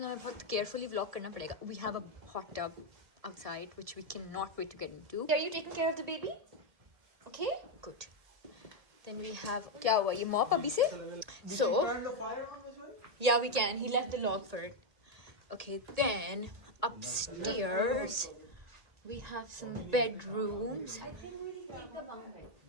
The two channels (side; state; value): left; late; 1.8 ms